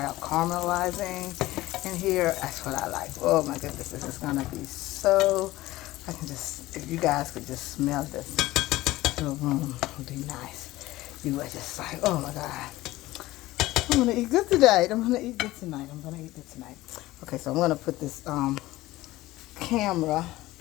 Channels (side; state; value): right; quieter; 17.5 dB